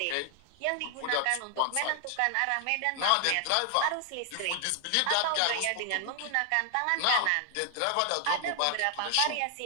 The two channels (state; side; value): different; both; correlation 0.00